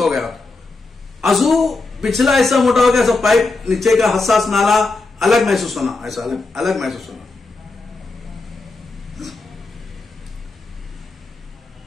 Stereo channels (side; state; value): right; quieter; 3.6 dB